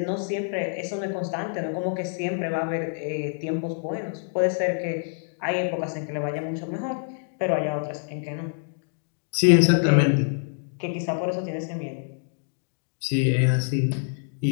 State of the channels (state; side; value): silent; right; digital silence